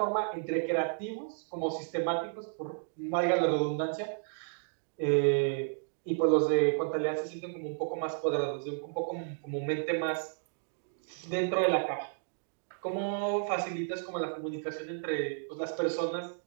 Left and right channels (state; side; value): silent; left; digital silence